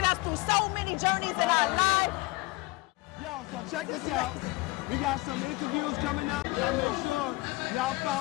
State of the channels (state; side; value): quieter; right; 22.4 dB